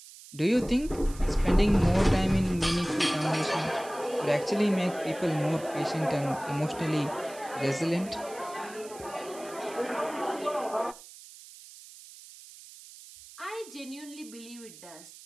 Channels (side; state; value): right; noise; hiss, 18 dB below the sound